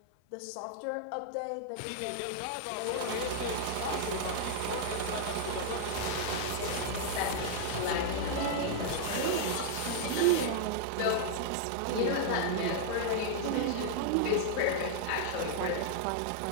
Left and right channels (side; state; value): both; different; correlation -0.01